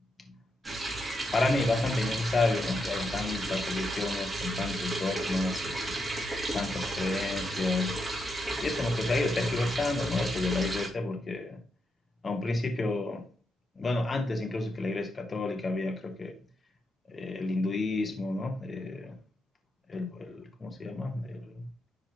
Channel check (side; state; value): both; normal; correlation 0.83